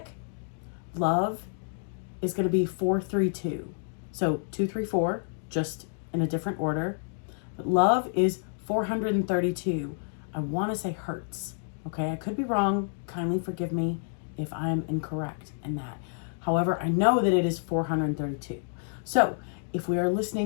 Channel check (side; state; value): right; silent; digital silence